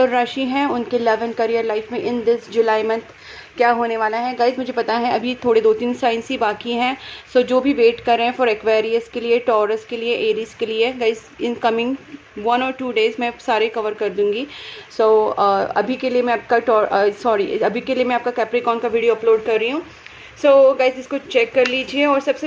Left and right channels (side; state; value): both; identical; correlation 1.00